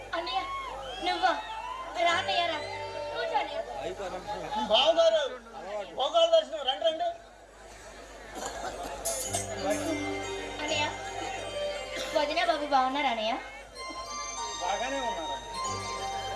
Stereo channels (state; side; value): identical; both; correlation 1.00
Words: అన్నయ్య నువ్వా? రానయ్యారా? కూర్చోండి. బావగారు భోగాల దర్శనం రండి రండి. అన్నయ్య వదిన బాబు బాగున్నారా అన్నయ్య? బాగానే ఉన్నారు.